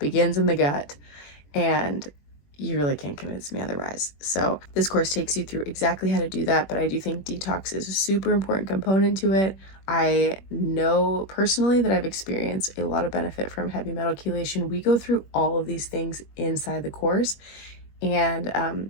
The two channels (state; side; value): late; right; 21 ms